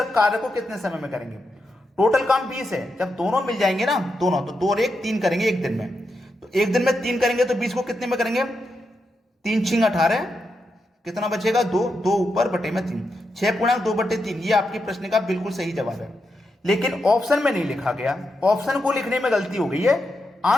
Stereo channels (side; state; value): both; normal; correlation 0.85